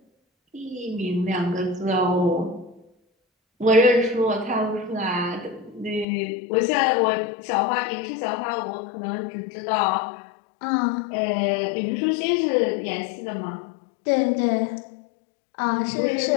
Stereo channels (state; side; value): drops out; right; at 6.1 s